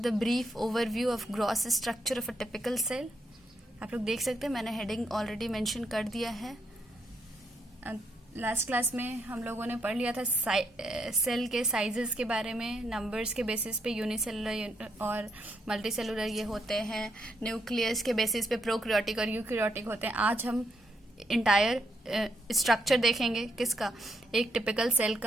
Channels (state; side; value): normal; both; correlation 0.77